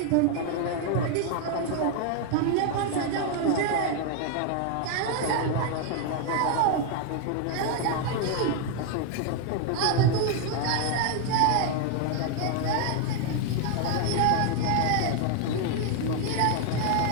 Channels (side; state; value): both; different; correlation 0.00